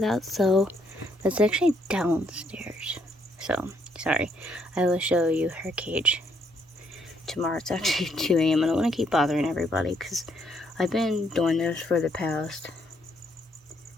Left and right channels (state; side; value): normal; both; correlation 0.71